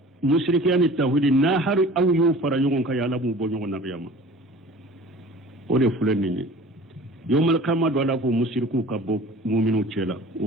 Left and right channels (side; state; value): both; normal; correlation 0.44